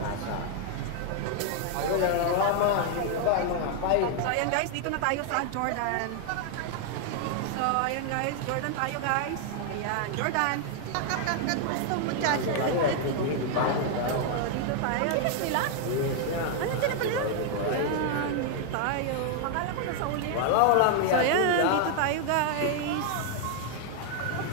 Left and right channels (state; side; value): different; both; correlation 0.00